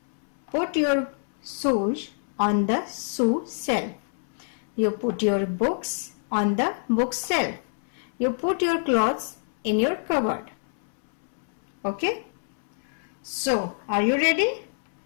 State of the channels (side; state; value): right; silent; 61 dB below the other